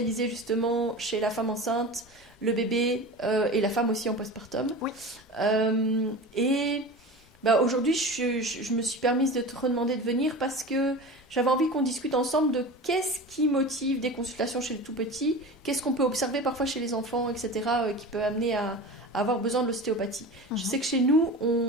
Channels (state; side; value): normal; both; correlation 0.32